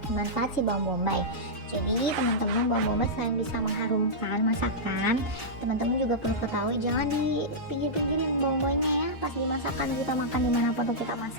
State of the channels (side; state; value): both; normal; correlation -0.12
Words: manfaat si bawang bombay. Jadi teman-teman, bawang bombay selain bisa mengharumkan masakan, teman-teman juga perlu ketahui jangan di pinggir-pinggirin bawang bombay ya. Pas dimasakkan kita makan dimanapun tuh kita